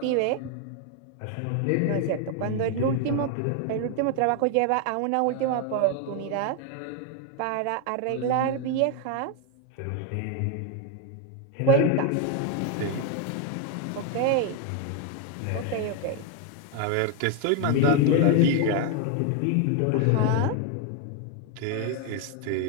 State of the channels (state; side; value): different; both; correlation 0.01